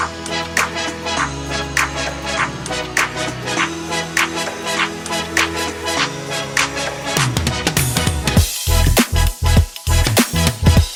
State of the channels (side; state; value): both; identical; correlation 1.00